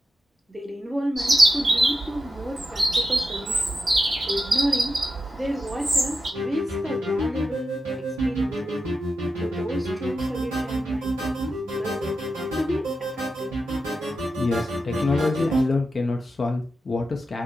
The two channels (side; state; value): both; normal; correlation 0.88